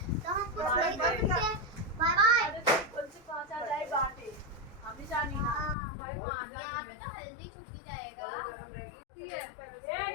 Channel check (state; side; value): drops out; right; at 5.8 s